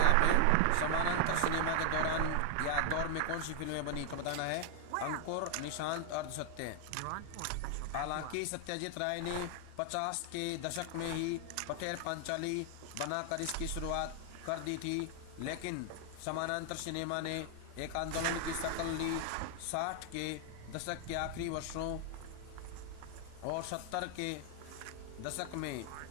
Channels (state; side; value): different; both; correlation 0.00